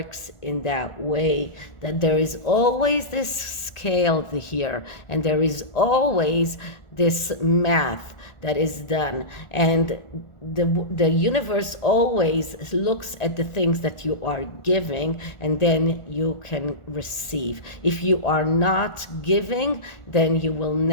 in that way, that there is always this scale here, and there is always this math that is done, and the universe always looks at the things that you are giving, and then you can receive. If you are not giving, then you will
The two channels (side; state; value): right; late; 1.4 ms